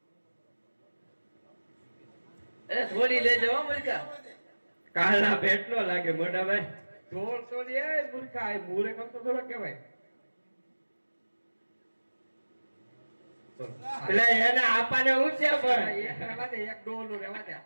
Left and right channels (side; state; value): both; inverted; correlation -1.00